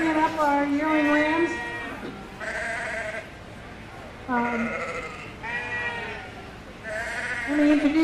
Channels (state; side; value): identical; both; correlation 1.00